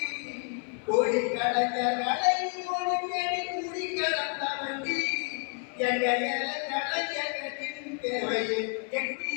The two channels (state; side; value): quieter; right; 36.1 dB